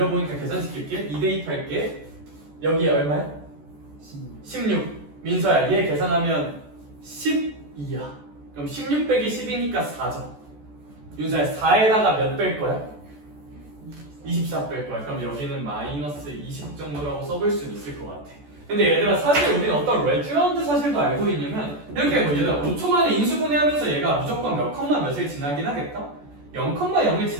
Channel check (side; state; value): left; late; 14 ms